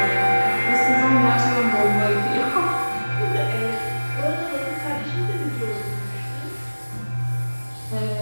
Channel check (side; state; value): both; inverted; correlation -1.00